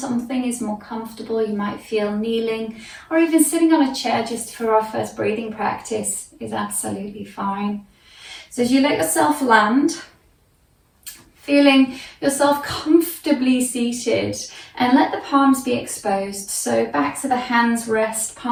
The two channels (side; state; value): both; identical; correlation 1.00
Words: is more comfortable. You might feel kneeling or even sitting on a chair just for our first breathing practice is absolutely fine. So as you let yourself land, feeling yourself comfortably seated, and let the palms be exposed. So back to the hands rest,